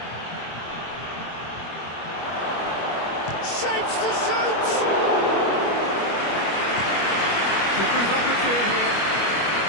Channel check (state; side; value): late; right; 25 ms